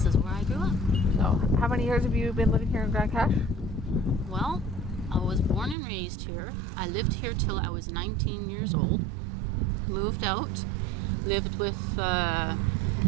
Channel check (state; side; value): drops out; left; at 5.8 s